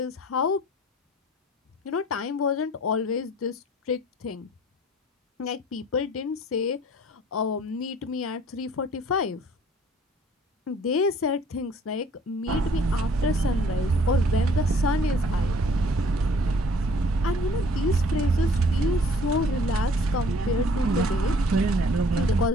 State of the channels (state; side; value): normal; both; correlation 0.55